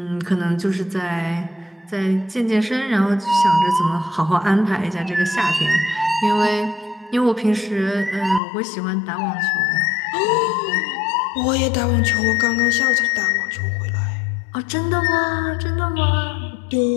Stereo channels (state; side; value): drops out; right; at 8.4 s